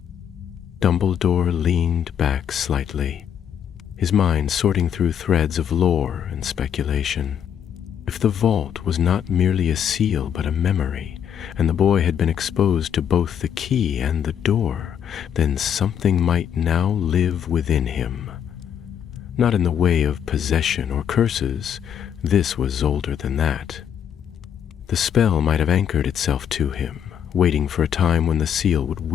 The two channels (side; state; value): right; quieter; 8.7 dB